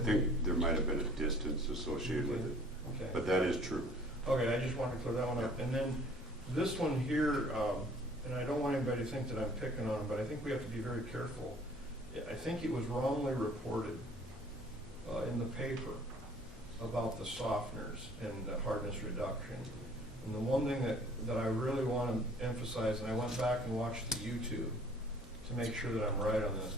think there might have been a distance associated with it, Okay. but that is true. Okay, I just wanted to clear that one up. And then this one here, and I don't want anybody to think that I'm picking on them, but I think we have to be very careful. I think it was wrongly reported in the paper about the softeners and the hardness reduction. And the one thing that I really want to emphasize, and I went back and watched the YouTube to make sure that I'm right on this.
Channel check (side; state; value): left; noise; hum, 20 dB below the sound